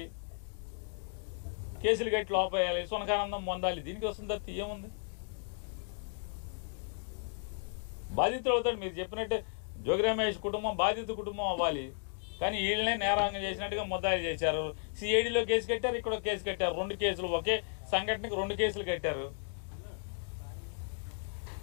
కేసులు కట్టి లోపేయాలి, సునకానందం పొందాలి. దీనికి వస్తుంది తప్ప ఏముంది? బాధితులు అవుతాడు. మీరు చెప్పినట్టు జోగి రమేష్ కుటుంబం బాధిత కుటుంబం అవ్వాలి, కానీ వీళ్ళనే నేరాంగం చేసినట్టుగా ముద్దాయిలు చేశారు. సిఐడిలో కేసు కట్టారు, ఇక్కడ కేసు కట్టారు. 2 కేసులు, ఒకే సంఘటనకి 2 కేసులు కట్టారు.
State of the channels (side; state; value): right; silent; digital silence